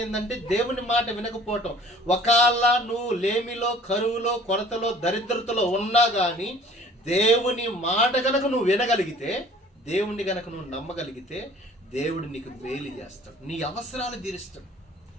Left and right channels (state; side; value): normal; both; correlation 0.51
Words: ఏంటంటే దేవుని మాట వినకపోవటం. ఒకవేళ నువ్వు లేమిలో, కరువులో, కొరతలో, దరిద్రతలో ఉన్నా కానీ దేవుని మాట గనక నువ్వు వినగలిగితే, దేవుణ్ణి గనక నువ్వు నమ్మగలిగితే దేవుడు నీకు మేలు చేస్తాడు, నీ అవసరాలు తీరుస్తాడు.